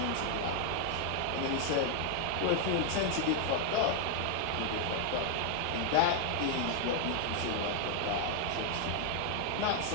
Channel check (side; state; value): both; different; correlation 0.00